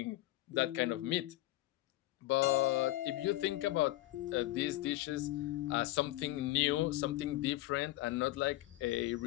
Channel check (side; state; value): right; quieter; 16.9 dB